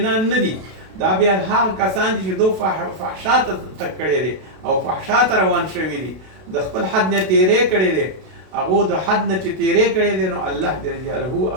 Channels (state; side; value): late; left; 32 ms